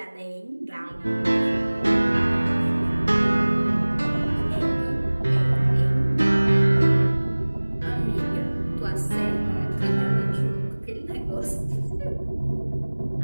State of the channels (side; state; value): both; inverted; correlation -1.00